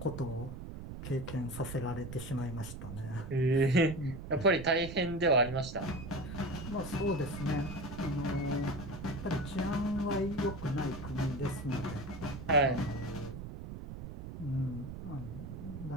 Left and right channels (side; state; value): right; noise; rumble, 9 dB below the sound